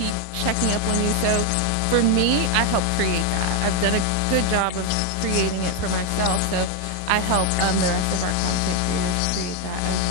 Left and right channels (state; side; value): different; both; correlation 0.01